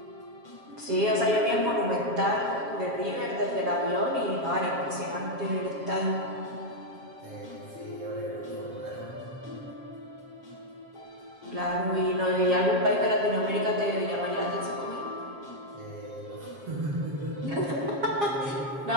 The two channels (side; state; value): left; late; 7.4 ms